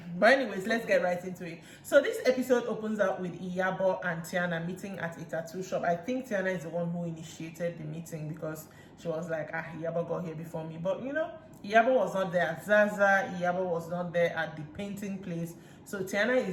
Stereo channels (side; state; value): both; identical; correlation 1.00